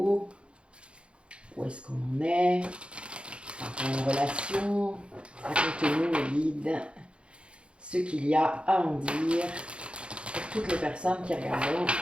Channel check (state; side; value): late; left; 0.057 ms